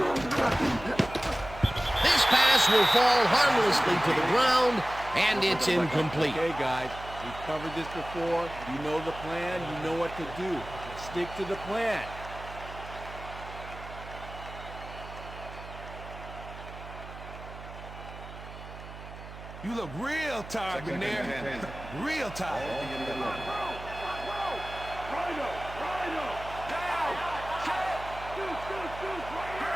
This pass will fall harmlessly to the ground, and it's incomplete. Okay, guys, we've covered this before. You know the plan. You know what to do. Stick to the plan. You look real tired, McNair. Real tired.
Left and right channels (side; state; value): right; noise; hum, 13 dB below the sound